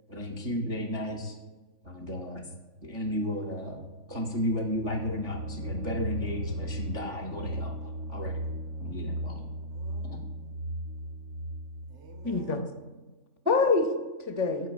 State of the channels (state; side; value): late; left; 3.5 ms